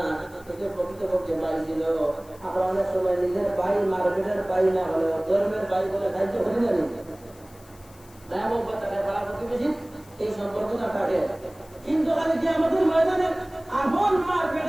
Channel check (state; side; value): noise; left; hiss, 25 dB below the sound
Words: কিন্তু প্রকৃতপক্ষে ভাই ছিল আমরা অনেক সময় নিজের ভাই মার্কেটের ভাই না হলেও ধর্মের ভাই বলে সাহায্য করি না এই সম্পর্কটা কাটে। কিন্তু খালি কি আমাদের ময়দানে আপন মা